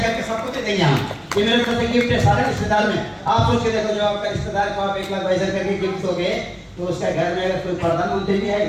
करके सबको दे देंगे हम। ये मेरे तरफ से गिफ्ट है सारे रिश्तेदार में। आप सोच के देखो, जो आपका रिश्तेदार को आप 1 लाख भाई सर करके गिफ्ट दोगे तो उसका घर में अगर कोई प्रधानमंत्री भी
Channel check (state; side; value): identical; both; correlation 1.00